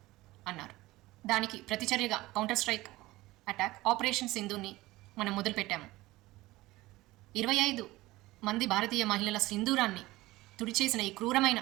అన్నారు. దానికి ప్రతిచర్యగా కౌంటర్ స్ట్రైక్ అటాక్ ఆపరేషన్ సింధూని మనం మొదలుపెట్టాము. 25 మంది భారతీయ మహిళల సింధూరాన్ని తుడిచేసిన ఈ క్రూరమైన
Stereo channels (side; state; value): left; quieter; 18.8 dB